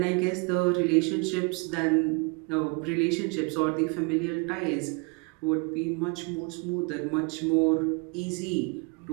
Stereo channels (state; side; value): quieter; left; 31.8 dB